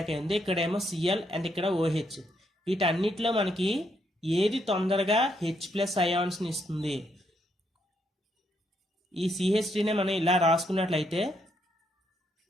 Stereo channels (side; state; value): both; normal; correlation 0.76